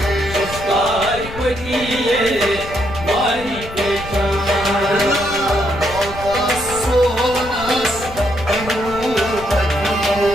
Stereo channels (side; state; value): left; noise; rumble, 13 dB below the sound